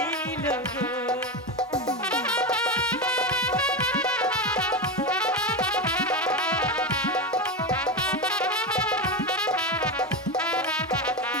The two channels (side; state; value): both; normal; correlation 0.16